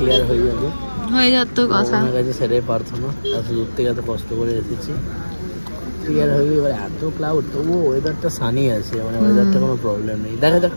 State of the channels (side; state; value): both; inverted; correlation -1.00